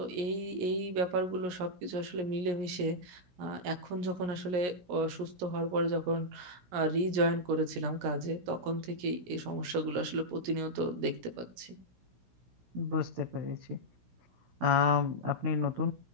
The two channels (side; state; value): left; late; 17 ms